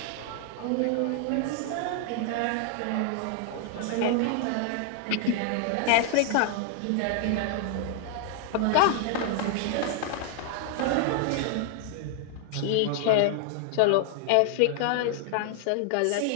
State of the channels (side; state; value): both; different; correlation 0.00